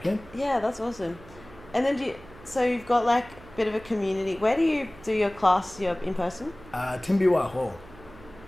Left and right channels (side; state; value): right; noise; hum, 21 dB below the sound